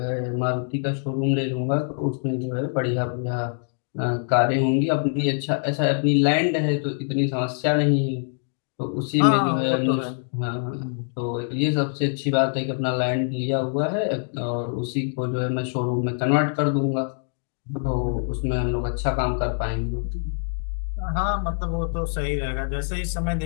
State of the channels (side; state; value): right; silent; digital silence